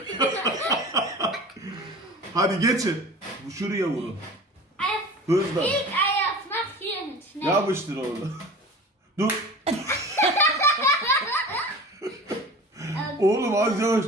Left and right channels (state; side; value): normal; both; correlation 0.38